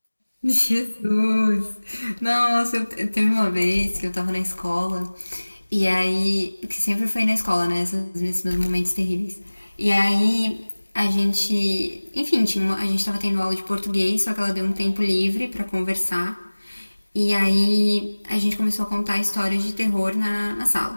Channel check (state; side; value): inverted; both; correlation -1.00